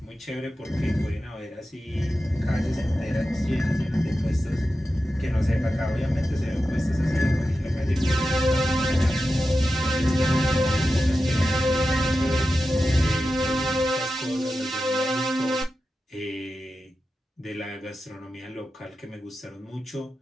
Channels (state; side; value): normal; both; correlation 0.92